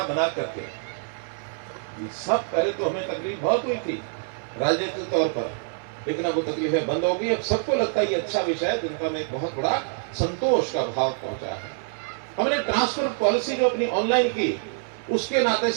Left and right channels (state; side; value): silent; left; 57 dB below the other